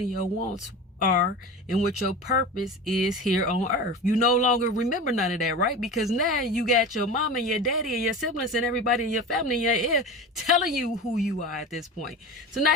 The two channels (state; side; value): normal; both; correlation 0.30